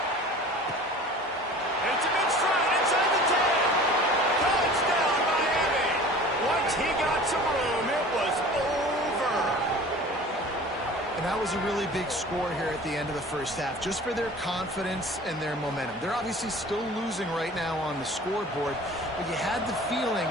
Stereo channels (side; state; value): both; normal; correlation 0.43